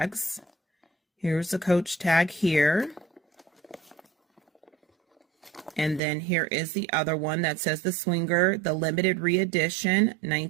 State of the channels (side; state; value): left; drops out; at 6.0 s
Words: Here's the Coach tag here. And then here is the other one that says the Swinger, the limited re-edition,